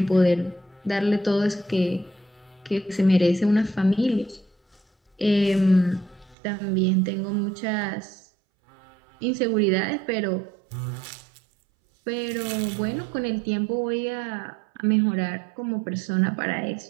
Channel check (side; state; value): left; drops out; at 6.4 s